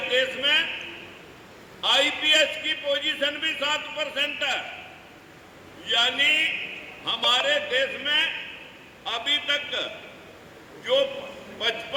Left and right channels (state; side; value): identical; both; correlation 1.00